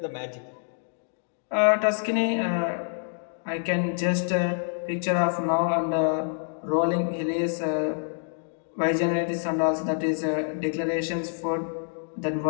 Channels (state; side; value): silent; right; digital silence